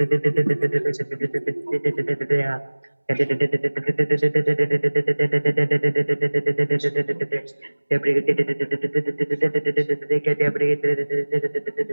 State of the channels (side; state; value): both; inverted; correlation -1.00